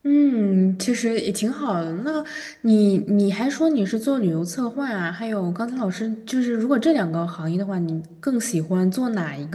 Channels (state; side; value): identical; both; correlation 1.00